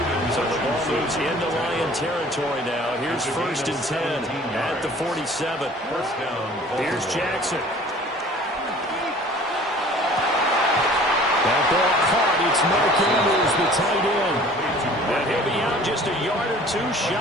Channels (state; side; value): normal; both; correlation 0.49